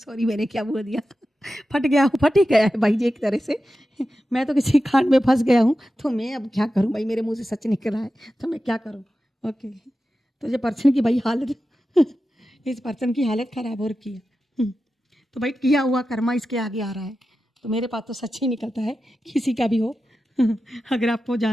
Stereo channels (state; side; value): normal; both; correlation 0.92